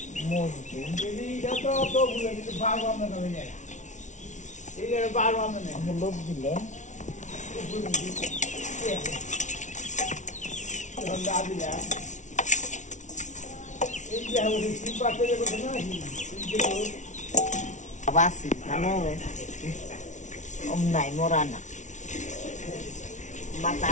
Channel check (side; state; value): right; late; 0.36 ms